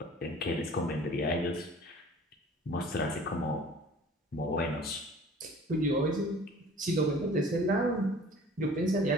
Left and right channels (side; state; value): both; normal; correlation 0.47